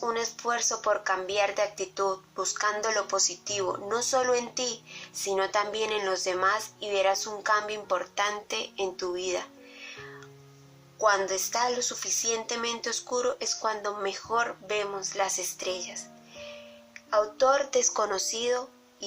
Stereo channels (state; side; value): identical; both; correlation 1.00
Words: un esfuerzo por cambiar de actitud, buscando lo positivo, no solo en ti, sino también en los demás y verás un cambio importante en tu vida. Cuando está lo suficientemente oscuro es cuando mejor vemos las estrellas. Autor desconocido,